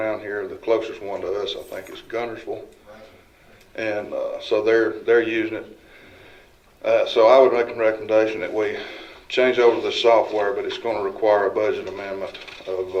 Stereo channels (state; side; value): identical; both; correlation 1.00